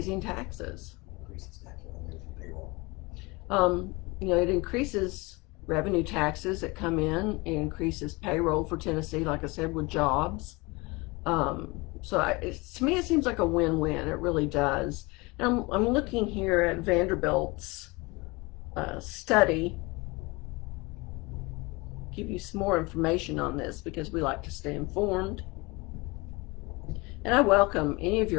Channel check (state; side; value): quieter; right; 25.1 dB